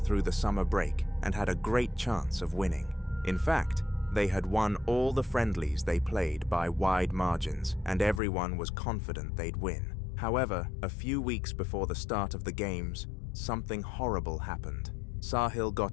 the summer break and had a great chance of winning. In fact, they had won all the friendlies they played by wide margins, and everyone was confident they'd win. However, a few weeks before the start of the games, something horrible happened. Sahil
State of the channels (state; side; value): drops out; right; at 8.2 s